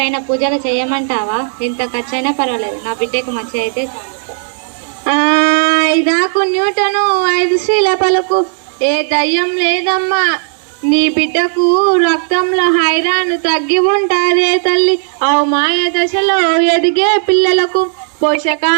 పూజలు చేయమంటావా? ఎంత ఖర్చైనా పర్వాలేదు, నా బిడ్డకు మంచి అయితే. ఐదాకు న్యూటను 5 శ్రీల పలుకు, ఏ దయ్యం లేదమ్మా. నీ బిడ్డకు రక్తంలో ఐరన్ తగ్గి ఉంటారే తల్లి. మాయ దశలో ఎదిగే పిల్లలకు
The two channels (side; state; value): left; silent; digital silence